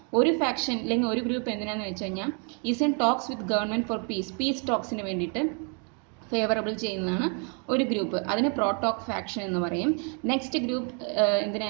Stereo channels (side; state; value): left; quieter; 38.6 dB